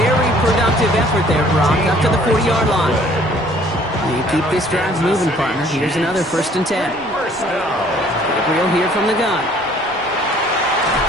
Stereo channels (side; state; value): both; normal; correlation 0.57